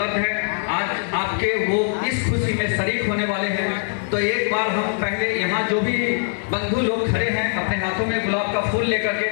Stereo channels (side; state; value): right; silent; 64 dB below the other